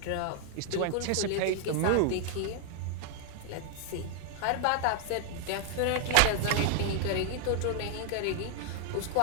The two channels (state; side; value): different; both; correlation 0.00